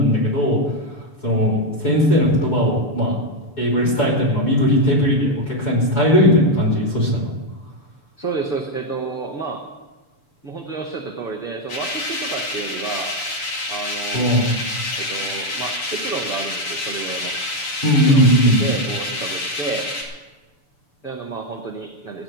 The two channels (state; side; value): late; right; 6.9 ms